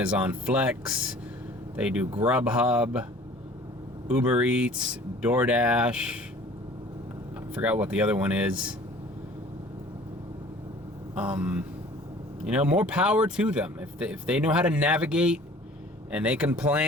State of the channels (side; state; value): both; normal; correlation 0.49